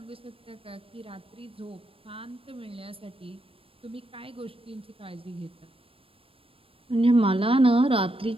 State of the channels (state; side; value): late; left; 0.27 ms